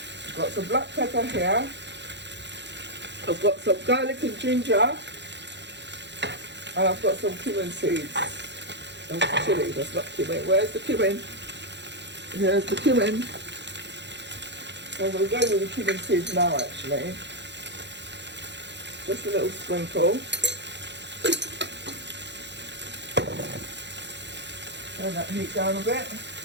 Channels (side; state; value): left; late; 0.51 ms